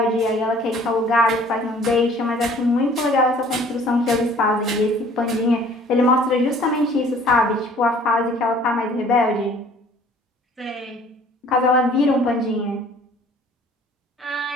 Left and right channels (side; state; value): both; normal; correlation 0.53